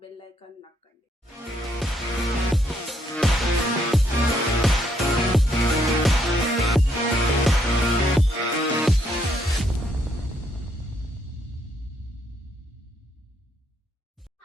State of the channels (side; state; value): both; normal; correlation 0.73